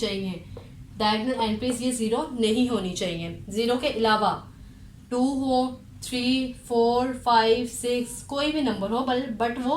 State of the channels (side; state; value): both; identical; correlation 1.00